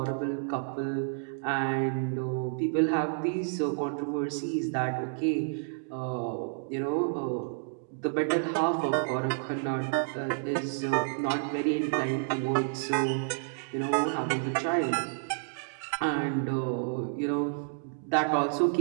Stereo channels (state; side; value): silent; left; digital silence